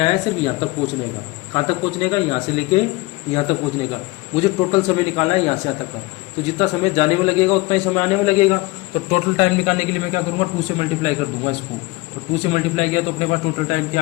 सिर्फ यहाँ तक पहुँचने का। कहाँ तक पहुँचने का? यहाँ से लेके यहाँ तक पहुँचने का। मुझे टोटल समय निकालना है यहाँ से यहाँ तक का। तो जितना समय जाने में लगेगा उतना ही समय आने में लगेगा। तो टोटल टाइम निकालने के लिए मैं क्या करूँगा? 2 से मल्टीप्लाई कर दूंगा इसको। तो 2 से मल्टीप्लाई किया तो अपने पास टोटल टाइम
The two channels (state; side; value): quieter; right; 21.2 dB